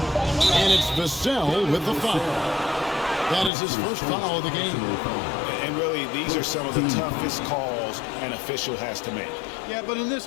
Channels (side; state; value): right; drops out; at 3.5 s